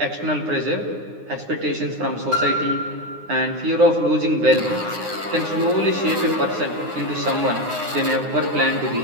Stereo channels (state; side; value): late; left; 9.7 ms